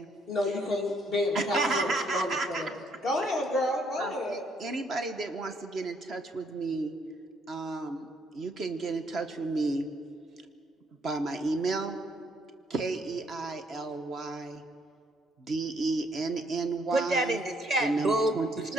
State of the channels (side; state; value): both; normal; correlation 0.69